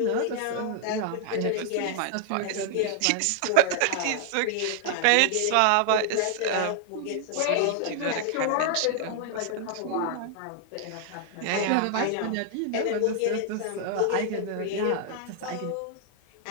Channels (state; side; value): different; both; correlation 0.00